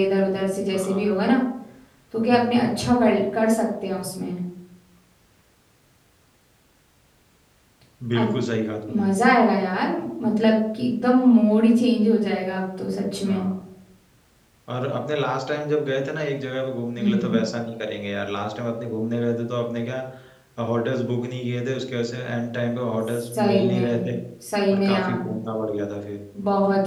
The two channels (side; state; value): both; identical; correlation 1.00